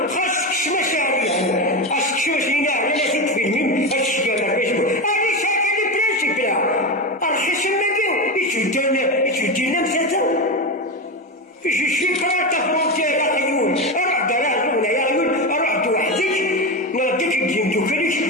خاصك تسمع شعبية خاصك تشوف لينا على ست فيلمين الشكاوي فيسبوك أنا شاكا لي برانسيب لا الخصم ماكيو يتودينا مساتا جو شي كراتا فرونتير يا عيون أروح دراهم ولا يا عيون أروح وحدك نرديك الدين دوكاليك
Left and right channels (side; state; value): both; normal; correlation 0.17